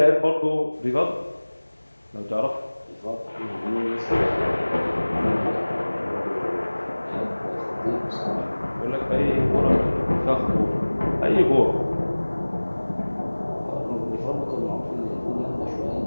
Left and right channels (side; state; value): both; inverted; correlation -1.00